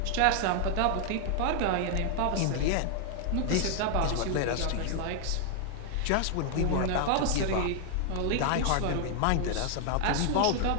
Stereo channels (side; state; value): both; different; correlation 0.00